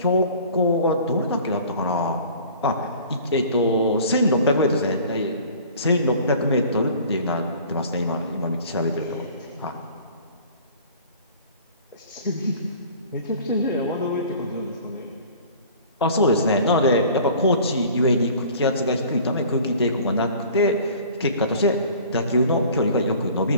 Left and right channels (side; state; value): both; inverted; correlation -0.46